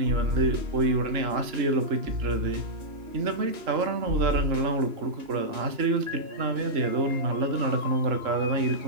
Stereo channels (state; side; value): late; left; 2.9 ms